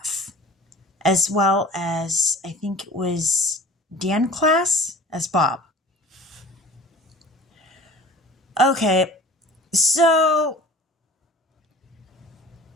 as well as, I think it was Dan Class as Bob. Okay, so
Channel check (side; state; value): both; normal; correlation 0.44